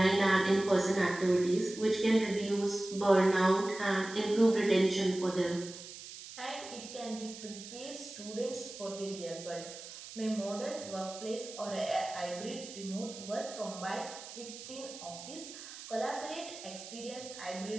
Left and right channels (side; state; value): right; noise; hiss, 13 dB below the sound